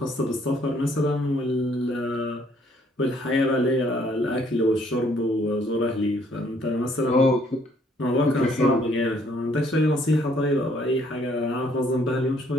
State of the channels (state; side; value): normal; both; correlation 0.65